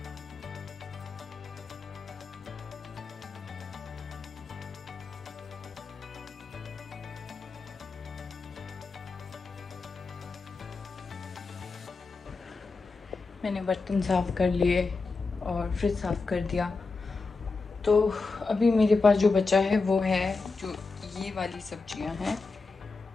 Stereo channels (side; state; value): right; quieter; 4.1 dB